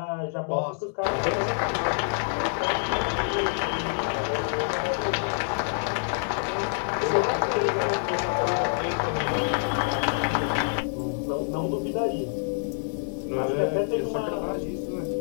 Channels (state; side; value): silent; right; digital silence